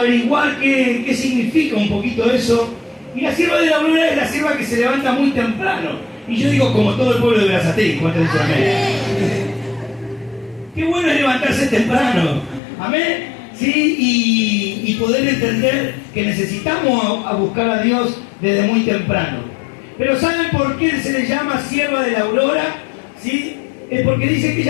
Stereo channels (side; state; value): right; drops out; at 12.6 s